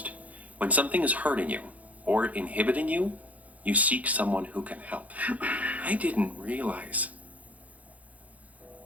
When something is hurting you or inhibiting you, you seek someone who can help. I didn't realize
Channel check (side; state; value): left; late; 0.071 ms